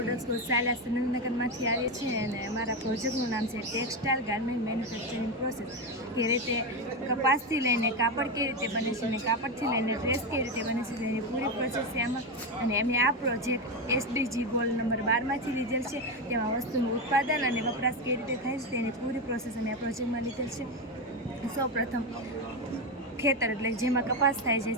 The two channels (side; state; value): both; normal; correlation 0.12